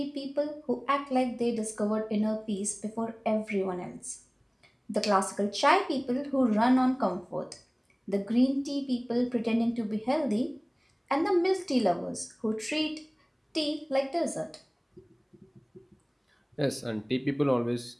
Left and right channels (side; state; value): both; identical; correlation 1.00